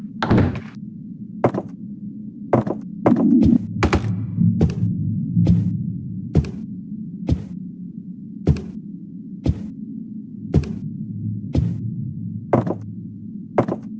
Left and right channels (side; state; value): both; identical; correlation 1.00